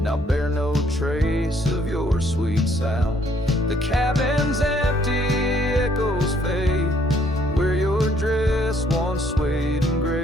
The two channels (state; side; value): normal; both; correlation 0.66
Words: now bear no trace of your sweet sound. The cabin's empty, echoes fade where your dress once swayed in